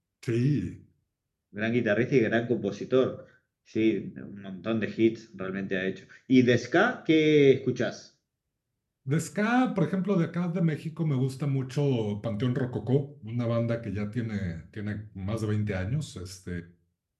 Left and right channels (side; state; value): both; identical; correlation 1.00